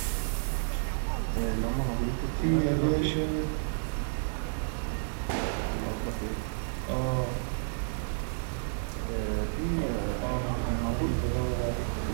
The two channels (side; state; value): left; silent; digital silence